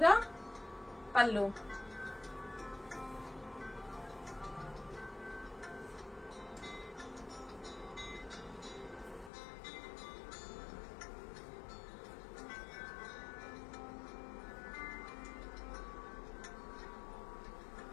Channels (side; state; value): right; drops out; at 9.3 s